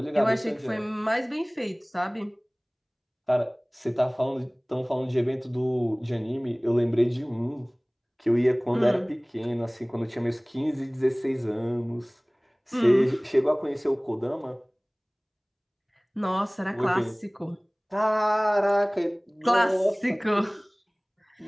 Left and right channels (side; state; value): both; identical; correlation 1.00